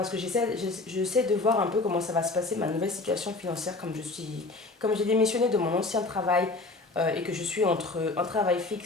que j'essaie de voir un peu comment ça va se passer, ma nouvelle situation financière, comme j'ai démissionné de mon ancien travail et que je suis entre un travail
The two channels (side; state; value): right; quieter; 3.4 dB